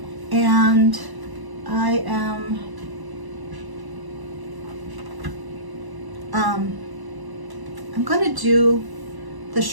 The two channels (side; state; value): left; late; 1.0 ms